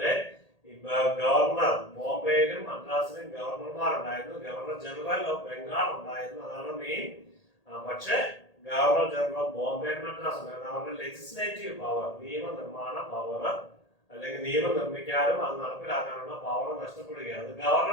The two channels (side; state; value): right; late; 1.8 ms